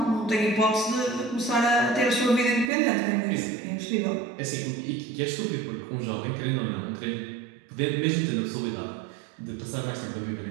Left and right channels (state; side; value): drops out; left; at 2.7 s